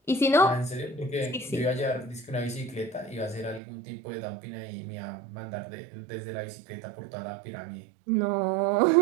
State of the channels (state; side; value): drops out; left; at 3.6 s